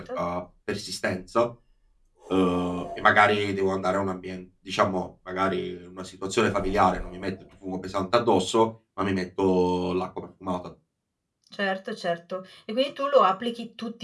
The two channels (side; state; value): both; identical; correlation 1.00